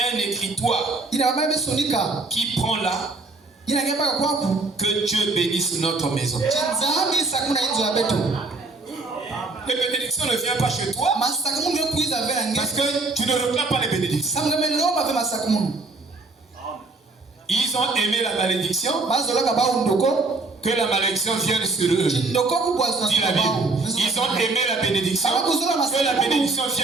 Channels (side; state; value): left; quieter; 3.5 dB